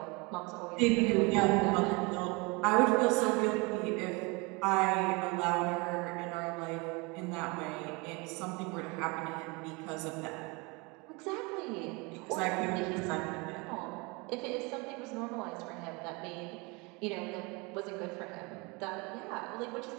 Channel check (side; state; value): left; quieter; 27.7 dB